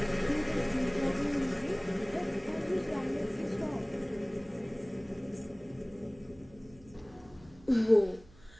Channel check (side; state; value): right; noise; hum, 24 dB below the sound